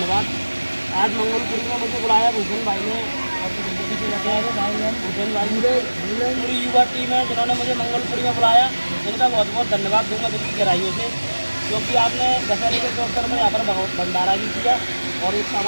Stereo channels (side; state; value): both; inverted; correlation -1.00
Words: आज मंगलपुरी में मुझे बुलाया भूषण भाई ने और भूषण भाई पूरी युवा टीम है जिन्होंने मुझे मंगलपुरी में बुलाया, इनका बहुत बहुत धन्यवाद दूंगा दिल की गहराइयों से, क्योंकि आपने दशहरे के अवसर में यहाँ पर भंडारा भी किया और एक